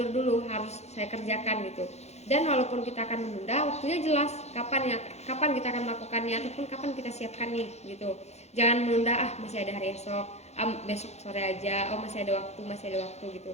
dulu, harus saya kerjakan gitu. Dan walaupun kita akan menunda, waktunya jelas kapan kita akan melakukannya ataupun kapan kita siapkan nih gitu. Jangan menunda, masih ada hari esok, besok sore aja, masih ada waktu gitu.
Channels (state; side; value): late; right; 0.32 ms